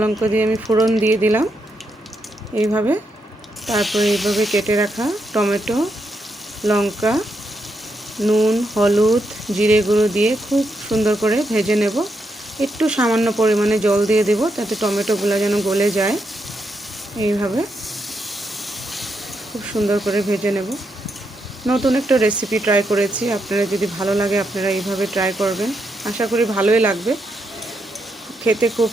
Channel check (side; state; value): both; normal; correlation 0.81